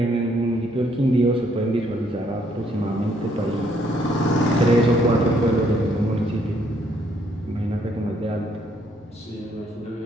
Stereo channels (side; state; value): both; normal; correlation 0.69